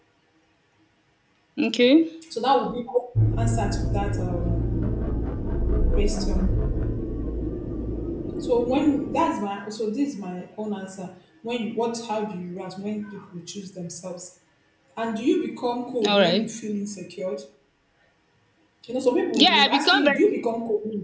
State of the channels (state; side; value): identical; both; correlation 1.00